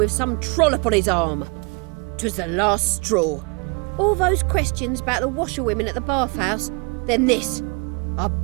some trollop on his arm. 'Twas the last straw. All those questions about the washerwomen at the bathhouse, then this. I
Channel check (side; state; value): left; quieter; 32.1 dB